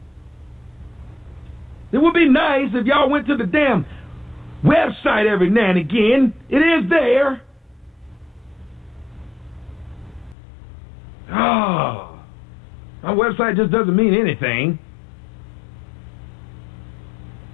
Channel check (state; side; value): drops out; right; at 10.4 s